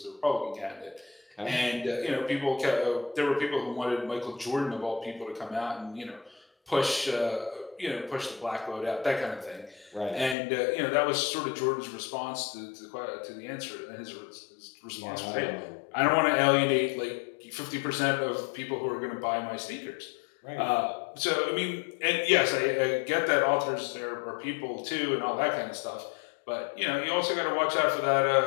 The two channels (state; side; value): drops out; right; at 10.4 s